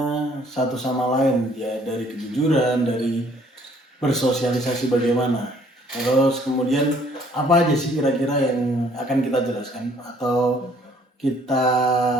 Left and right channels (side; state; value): both; normal; correlation 0.60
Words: satu sama lain, ya dari kejujuran, dari bersosialisasi bagaimana. Terus kemudian apa aja sih kira-kira yang akan kita jelaskan atau kita